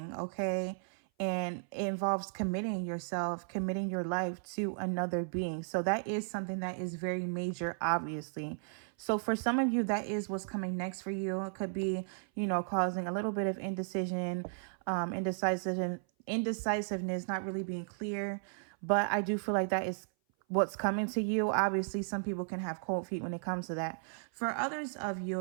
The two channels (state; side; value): silent; left; 55 dB below the other